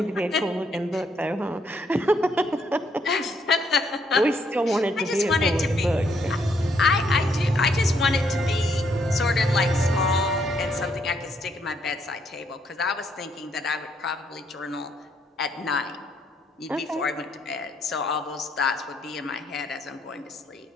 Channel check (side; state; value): both; normal; correlation 0.72